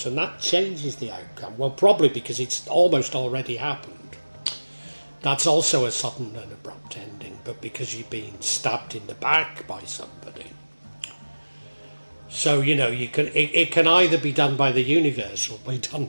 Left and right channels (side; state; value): both; inverted; correlation -1.00